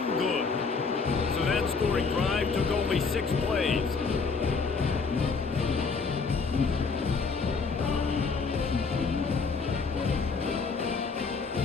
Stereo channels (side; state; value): right; quieter; 4.8 dB